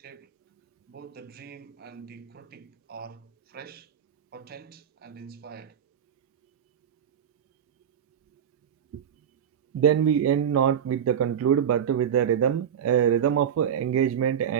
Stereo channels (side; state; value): left; quieter; 8.8 dB